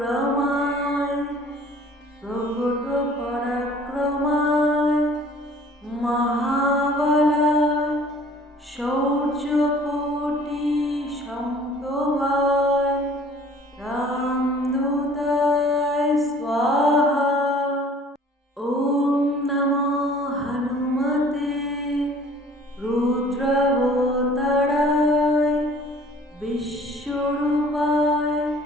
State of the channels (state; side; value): normal; both; correlation 0.52